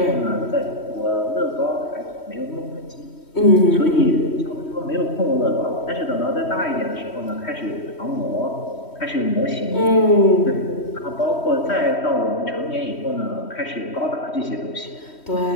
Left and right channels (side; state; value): right; late; 3.1 ms